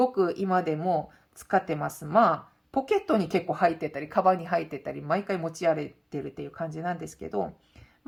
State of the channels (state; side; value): identical; both; correlation 1.00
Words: く今でも使ってます。まあ、ポケットに結構入ってたり、カバンに入ってたり、毎回持ち歩いてるっていう感じなんですけど、